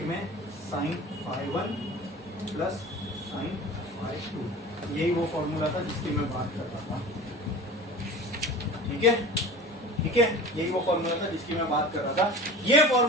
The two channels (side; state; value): both; normal; correlation 0.37